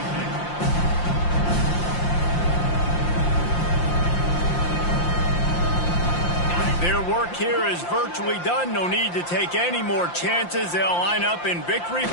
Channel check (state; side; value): late; right; 5.7 ms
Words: Their work here is virtually done. No need to take any more chances. They'll line up in victory